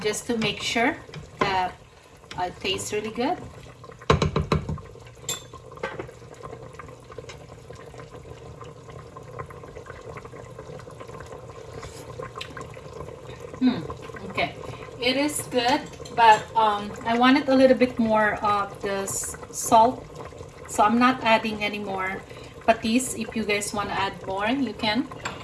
just to make sure that it tastes really good. Okay, it is good, but I wanted a little bit more of this salt, so I'm not adding any more patis. If you guys want to add more, you can,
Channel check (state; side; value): identical; both; correlation 1.00